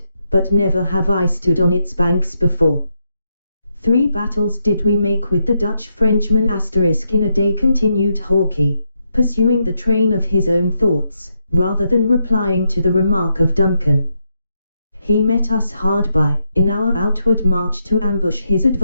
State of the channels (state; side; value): inverted; both; correlation -0.82